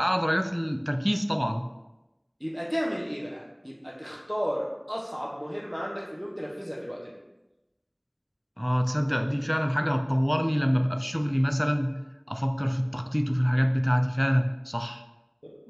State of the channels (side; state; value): both; identical; correlation 1.00